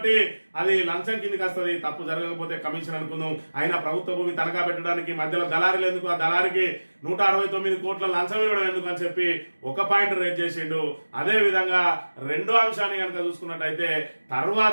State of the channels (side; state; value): both; inverted; correlation -1.00